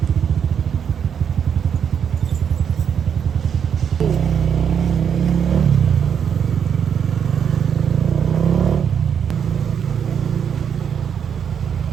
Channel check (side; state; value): left; quieter; 7.7 dB